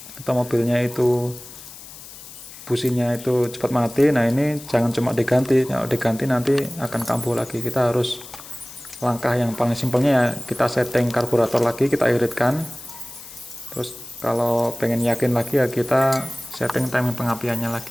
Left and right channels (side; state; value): left; noise; hiss, 16 dB below the sound